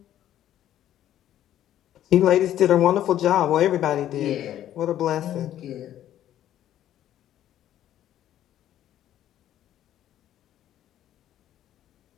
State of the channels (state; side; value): quieter; right; 11.9 dB